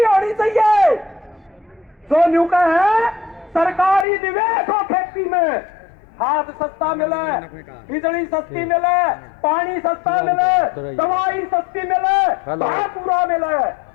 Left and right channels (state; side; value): drops out; right; at 4.0 s